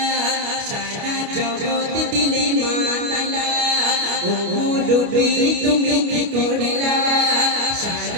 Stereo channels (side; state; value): left; late; 29 ms